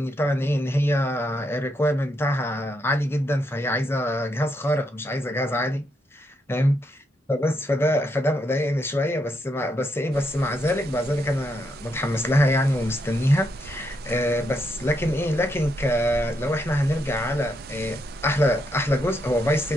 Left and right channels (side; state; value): both; normal; correlation 0.79